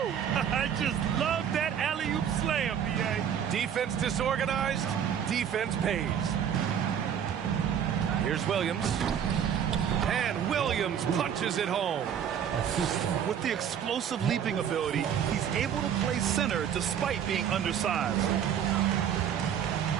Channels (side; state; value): left; quieter; 8.8 dB